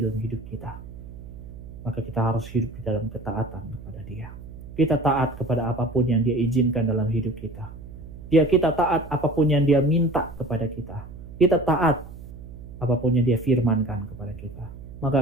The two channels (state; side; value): noise; right; hum, 14 dB below the sound